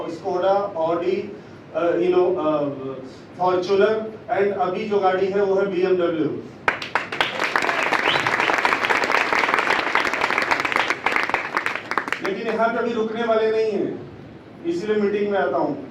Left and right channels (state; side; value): identical; both; correlation 1.00